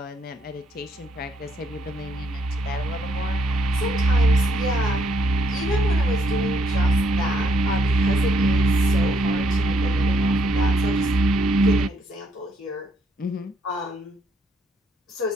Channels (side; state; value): both; normal; correlation 0.72